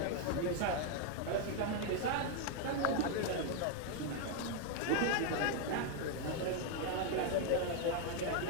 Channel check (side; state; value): both; different; correlation 0.00